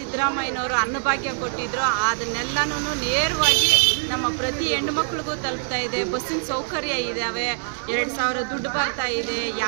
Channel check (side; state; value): left; silent; digital silence